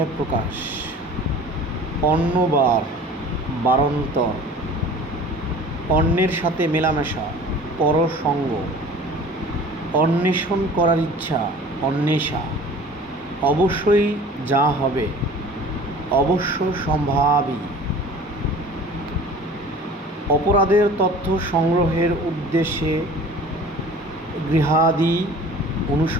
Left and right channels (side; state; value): both; normal; correlation 0.44